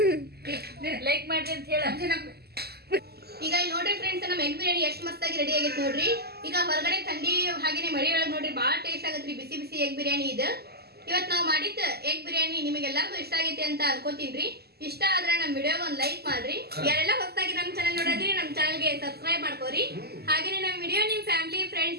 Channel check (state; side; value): late; left; 0.46 ms